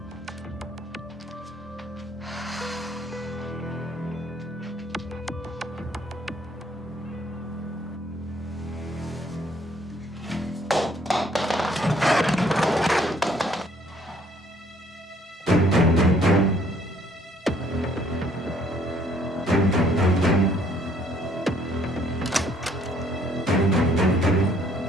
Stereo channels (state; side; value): normal; both; correlation 0.63